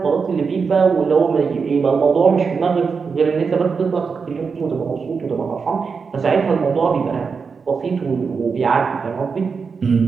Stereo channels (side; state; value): left; quieter; 5.4 dB